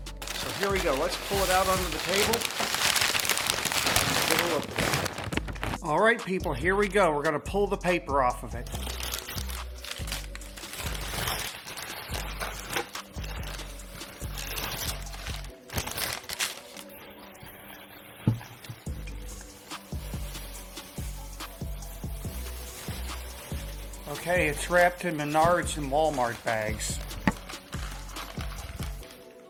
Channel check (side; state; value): both; identical; correlation 1.00